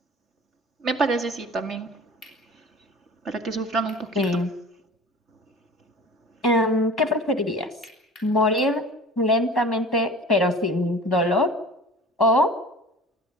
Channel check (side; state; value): both; normal; correlation 0.40